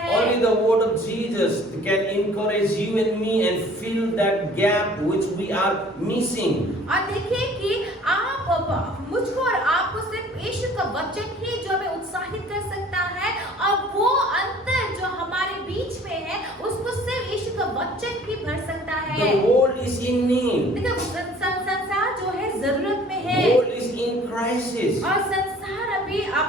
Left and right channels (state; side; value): normal; both; correlation 0.51